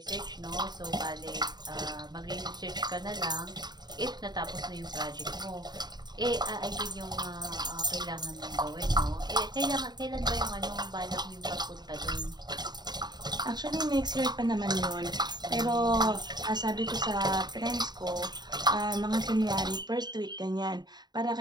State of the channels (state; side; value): late; left; 0.20 ms